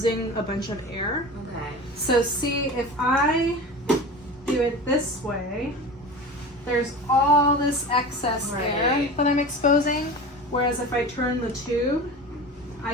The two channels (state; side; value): normal; both; correlation 0.32